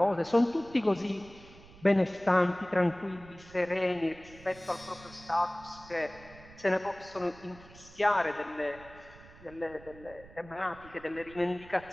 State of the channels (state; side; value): noise; right; rumble, 21 dB below the sound